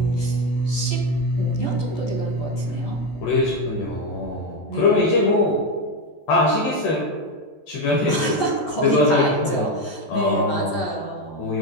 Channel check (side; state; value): right; late; 14 ms